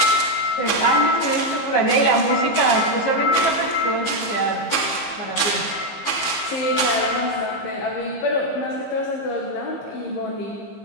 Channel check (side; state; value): right; late; 15 ms